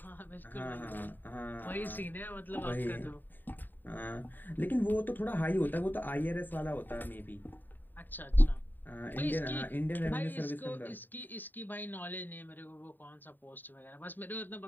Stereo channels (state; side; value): late; right; 0.090 ms